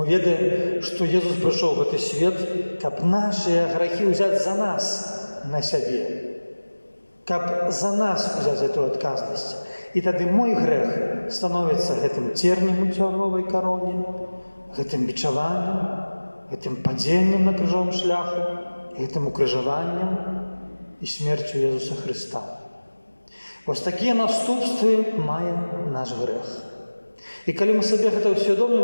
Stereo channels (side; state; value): both; inverted; correlation -1.00